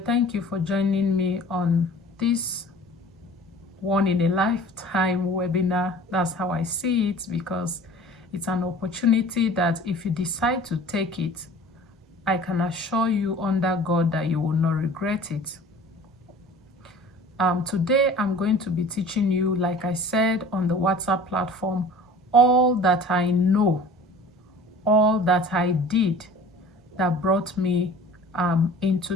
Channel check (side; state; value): both; normal; correlation 0.45